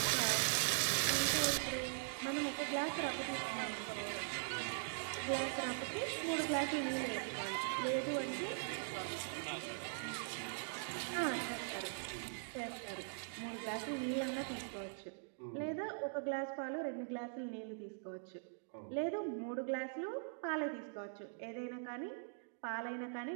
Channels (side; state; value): left; silent; digital silence